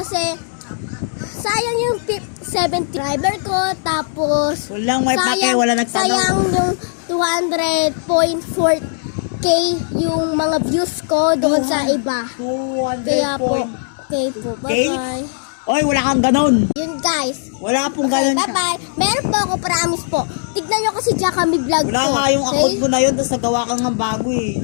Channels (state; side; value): silent; right; digital silence